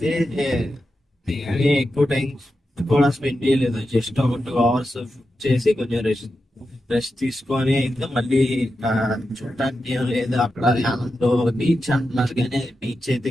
ఎక్కువ టైం కూడా స్పెండ్ చేయలేదు. జస్ట్ ఒక 2 hours చేసి కొంచెం రెస్ట్ తీసుకొని అయితే మళ్ళీ చూడటానికి ఏం లేదు. అక్కడ యానంలో బీచ్ అంటున్నారు కానీ బీచ్ అయితే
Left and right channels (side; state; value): both; normal; correlation 0.89